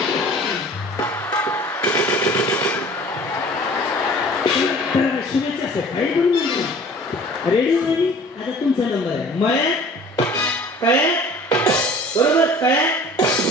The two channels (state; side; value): normal; both; correlation 0.47